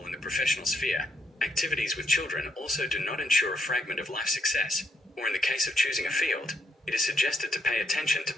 in the professional sphere. Activities with children also do not ensure a fragment of life success, or in the case of choosing a field, it is suggested to pay attention to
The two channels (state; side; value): normal; both; correlation 0.76